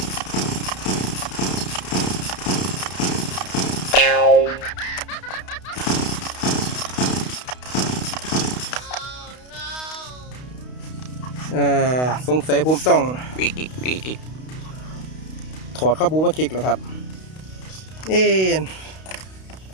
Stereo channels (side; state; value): right; late; 32 ms